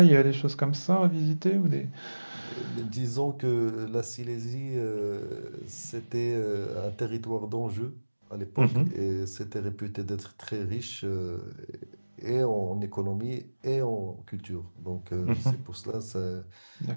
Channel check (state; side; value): inverted; both; correlation -1.00